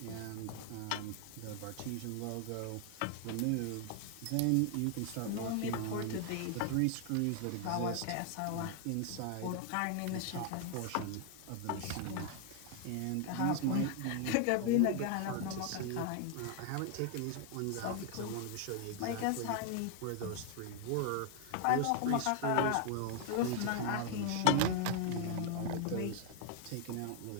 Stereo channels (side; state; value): both; different; correlation 0.00